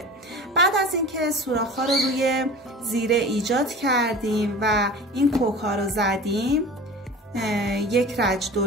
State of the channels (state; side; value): normal; both; correlation 0.37